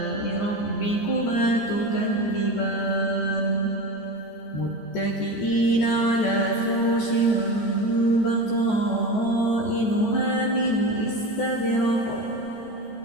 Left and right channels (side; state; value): right; late; 14 ms